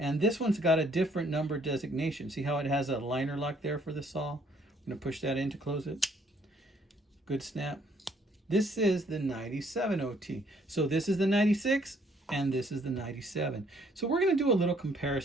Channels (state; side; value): normal; both; correlation 0.64